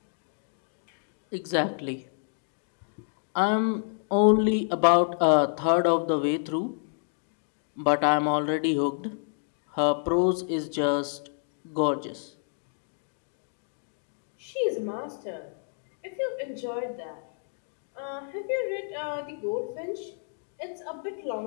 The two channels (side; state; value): right; silent; digital silence